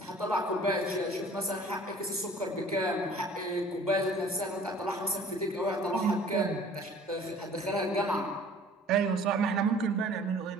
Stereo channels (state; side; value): normal; both; correlation 0.50